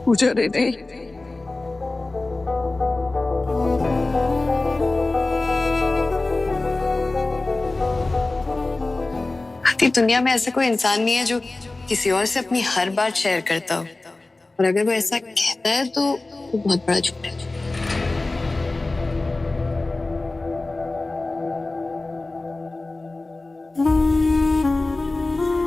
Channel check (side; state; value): right; quieter; 3.1 dB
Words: पूजा ने नहीं। आती दुनिया में ऐसा कोई इंसान नहीं है जो किसी और से अपनी हर बात शेयर करता हो, और अगर वो ऐसा कहता है तो वो बहुत बड़ा झूठ है।